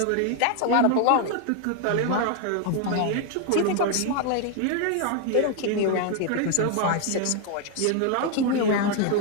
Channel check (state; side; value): different; both; correlation 0.01